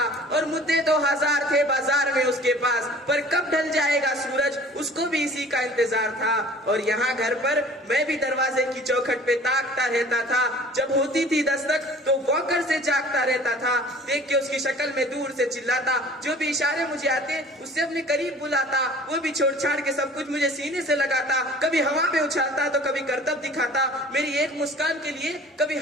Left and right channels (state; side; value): normal; both; correlation 0.47